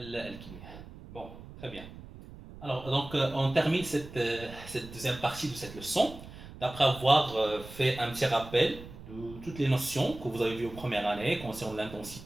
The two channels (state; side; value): noise; right; rumble, 15 dB below the sound